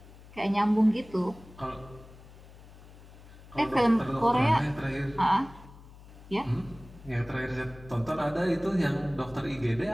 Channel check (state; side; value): noise; left; hum, 20 dB below the sound